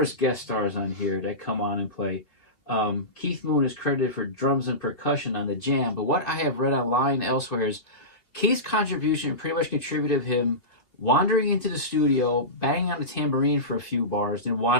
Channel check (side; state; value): right; late; 2.9 ms